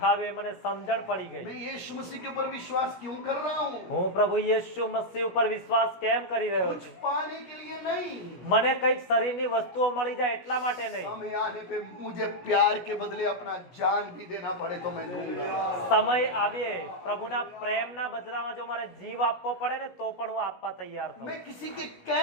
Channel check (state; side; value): late; right; 16 ms